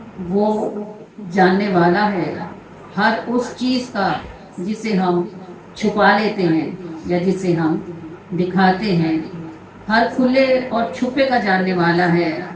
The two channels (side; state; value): both; identical; correlation 1.00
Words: وہ جاننے والا ہے ہر اس چیز کا جسے ہم چھپا لیتے ہیں یا جسے ہم دکھاتے ہیں، ہر کھلے اور چھپے کا جاننے والا ہے۔